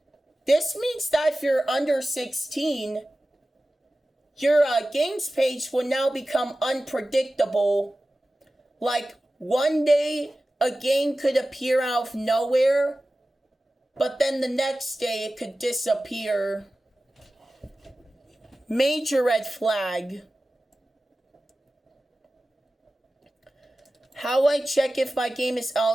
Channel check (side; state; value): both; normal; correlation 0.95